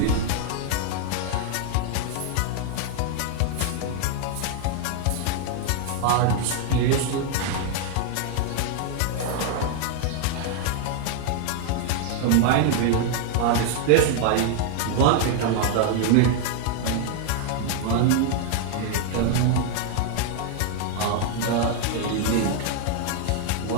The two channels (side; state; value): both; different; correlation 0.00